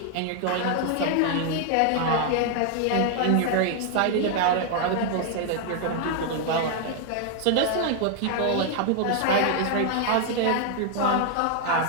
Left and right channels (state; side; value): different; both; correlation 0.00